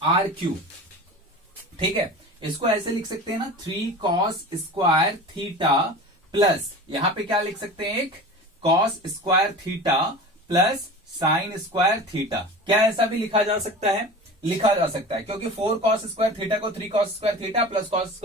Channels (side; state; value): both; normal; correlation 0.35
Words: ठीक है, इसको ऐसे लिख सकते हैं ना 3 cos स्क्वायर थीटा प्लस, यहां पे क्या लिख सकते हैं एक cos square theta plus sign square theta. क्या ऐसा भी लिखा जा सकता है, लिखा जा सकता है, क्योंकि 4 cos स्क्वायर थीटा को 3 cos square theta plus cos